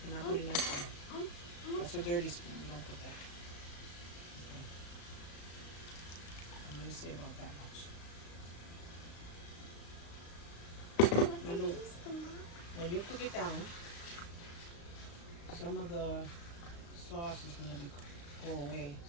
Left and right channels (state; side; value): late; right; 35 ms